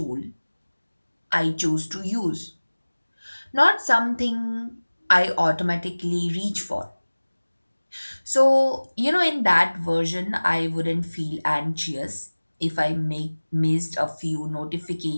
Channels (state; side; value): inverted; both; correlation -1.00